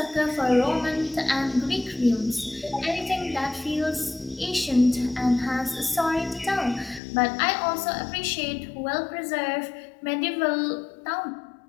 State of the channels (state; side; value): drops out; right; at 7.0 s